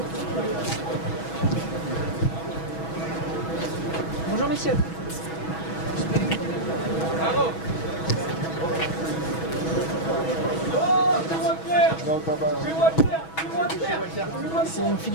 Bonjour messieurs. C'est une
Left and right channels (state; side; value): late; right; 6.2 ms